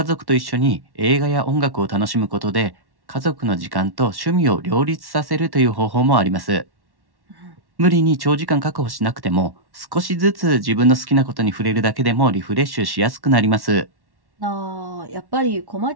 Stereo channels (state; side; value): late; left; 1.1 ms